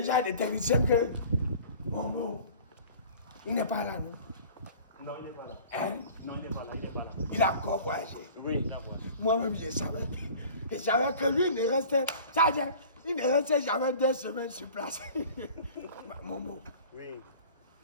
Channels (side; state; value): both; inverted; correlation -0.45